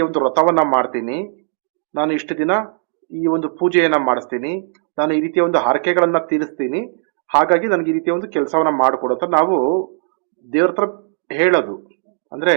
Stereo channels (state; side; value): silent; left; digital silence